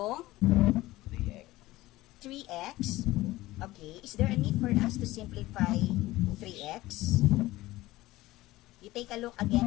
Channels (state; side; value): quieter; right; 17.8 dB